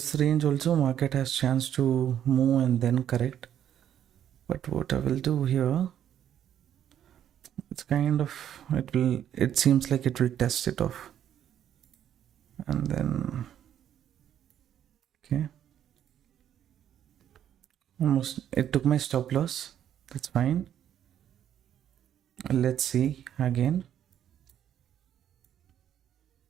range also market has chance to move and then correct. But what I will do here, it's kind of, it seems like it will test it off. And then, okay. Almost, it took my stop loss. That's fine. Let's see again.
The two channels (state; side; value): quieter; left; 10.1 dB